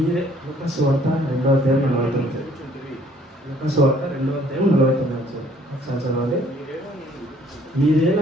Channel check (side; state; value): both; normal; correlation 0.60